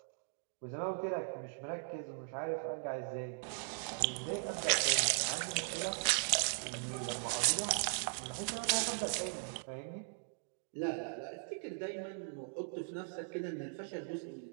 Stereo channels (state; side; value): silent; left; digital silence